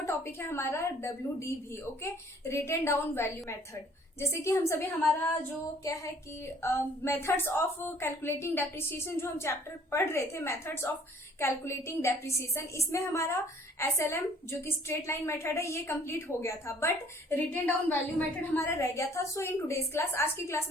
टॉपिक है हमारा WDV okay, written down value method. जैसे कि हम सभी हमारा जो क्या है कि मेथड्स ऑफ कैलकुलेटिंग डेप्रिसिएशन जो हम चैप्टर पढ़ रहे थे, मेथड्स ऑफ कैलकुलेटिंग डेप्रिसिएशन, इसमें हमारा SLM जो कि स्ट्रेट लाइन मेथड है ये कंप्लीट हो गया था, but written down value method हमारा रह गया था। सो इन टुडेज क्लास, आज की क्लास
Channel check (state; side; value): normal; both; correlation 0.57